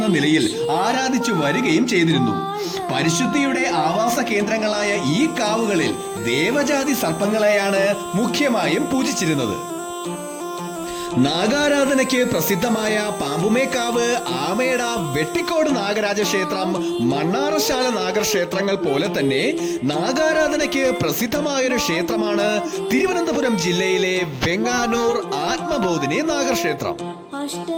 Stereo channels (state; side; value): identical; both; correlation 1.00